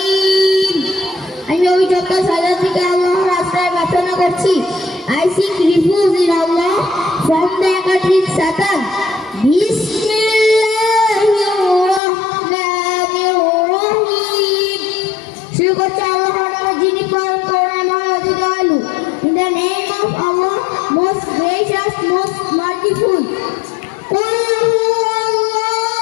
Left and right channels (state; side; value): drops out; right; at 12.0 s